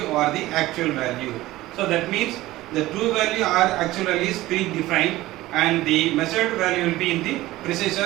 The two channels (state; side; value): quieter; left; 17.2 dB